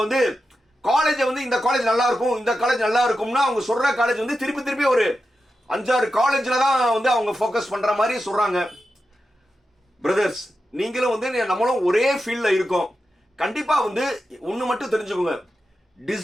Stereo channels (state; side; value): normal; both; correlation 0.90